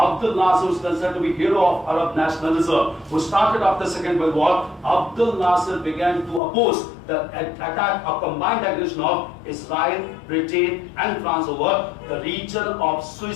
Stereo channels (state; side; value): drops out; right; at 6.4 s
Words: Nasser was considered to be hero of Arab nationalism, who started after Second World War. Abdel Nasser began to oppose the attack of combined aggression of Israel, Britain and France over the region of